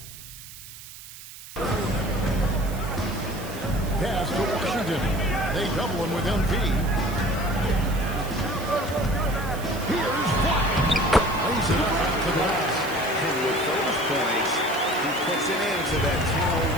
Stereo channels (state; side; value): noise; right; hiss, 15 dB below the sound